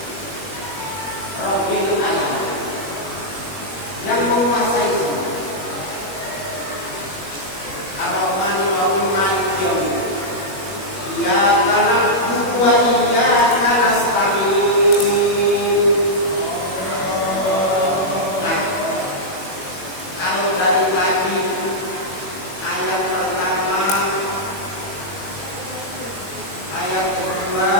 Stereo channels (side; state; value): right; late; 21 ms